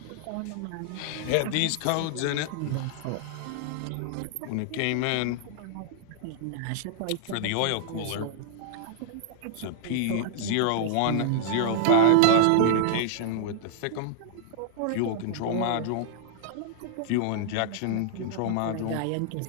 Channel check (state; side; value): different; both; correlation -0.01